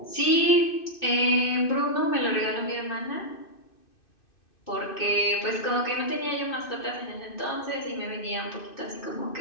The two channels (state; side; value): late; right; 2.6 ms